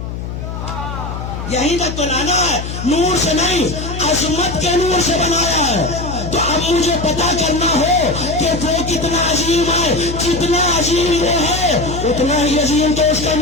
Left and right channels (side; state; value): left; noise; hum, 7 dB below the sound